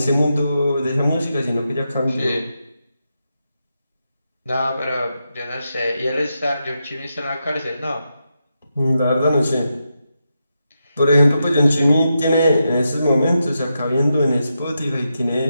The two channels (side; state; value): both; inverted; correlation -0.86